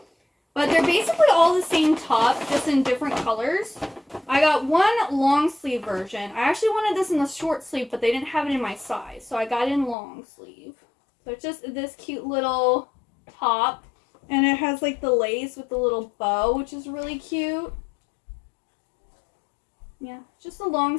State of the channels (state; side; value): drops out; right; at 10.0 s